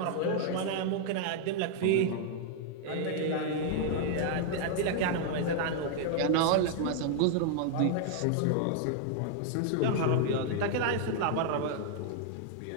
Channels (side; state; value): both; different; correlation 0.00